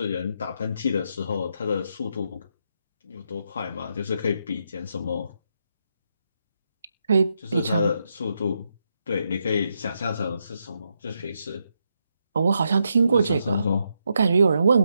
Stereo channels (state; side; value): inverted; both; correlation -0.81